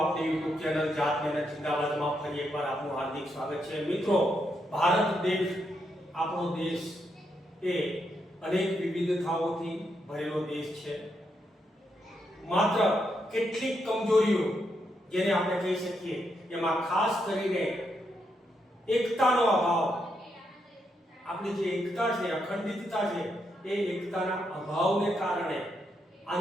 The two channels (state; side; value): normal; both; correlation 0.80